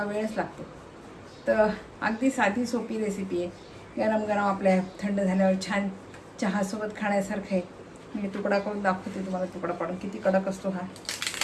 वेळच लागतो. तर अगदी साधी सोपी रेसिपी आहे. गरम गरम आपल्या थंड झाल्यावर छान चहासोबत खाण्यासारखं आहे. मी तुकडा करून दाखवते तुम्हाला, तुकडा पाडून किती कडक असतो हा.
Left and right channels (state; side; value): identical; both; correlation 1.00